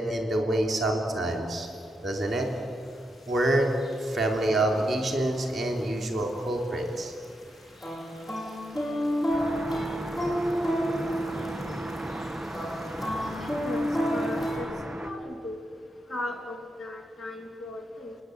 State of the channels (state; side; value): normal; both; correlation 0.84